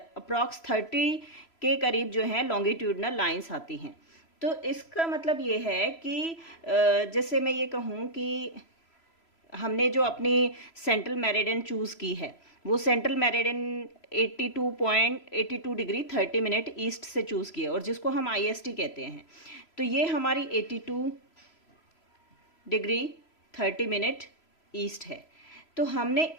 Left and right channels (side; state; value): right; late; 3.0 ms